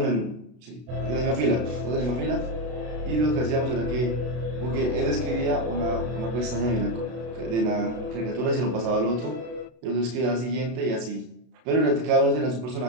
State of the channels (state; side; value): late; left; 32 ms